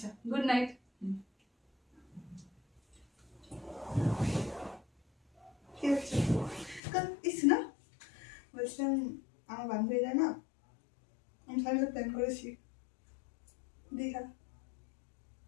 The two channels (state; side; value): drops out; right; at 6.8 s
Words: গুড নাইট। না বলছিলাম, আমার বান্ধবীরা না, আমি সবাই প্ল্যান করেছি দীঘা